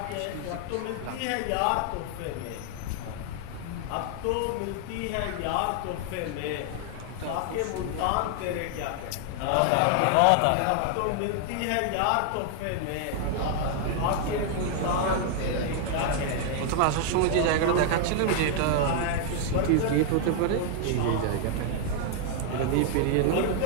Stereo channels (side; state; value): both; different; correlation 0.00